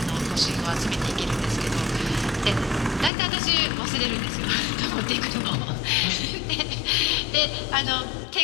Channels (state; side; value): drops out; right; at 3.1 s